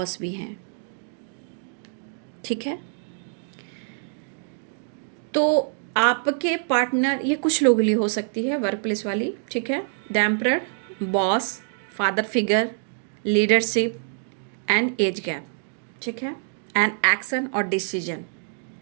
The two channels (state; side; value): silent; left; digital silence